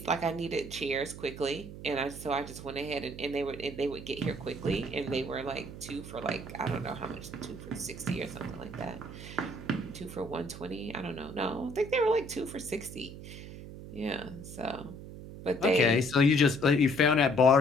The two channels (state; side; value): noise; right; hum, 12 dB below the sound